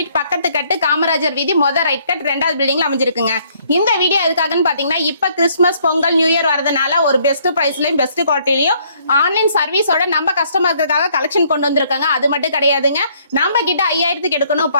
பக்கத்து கட்டு காமராஜர் வீதி ரைட் கட் 2வது பில்டிங்ல அமைஞ்சிருக்குங்க. இந்த வீடியோ எதுக்காகன்னு பாத்தீங்கன்னா இப்ப கிறிஸ்துமஸ் பொங்கல் நியூ இயர் வரதுனால ஒரு பெஸ்ட் பிரைஸ்லயும் பெஸ்ட் குவாலிட்டிலயும் ஆன்லைன் சர்வீஸோட நம்ம கஸ்டமர்களுக்காக கலெக்ஷன் கொண்டு வந்திருக்காங்க. அது மட்டும் கிடையாதுங்க, நம்ம கிட்ட 5000க்கு எடுக்கணும்,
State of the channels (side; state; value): both; inverted; correlation -0.65